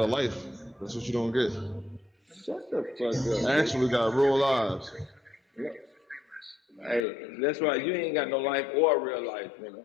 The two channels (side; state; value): right; drops out; at 7.1 s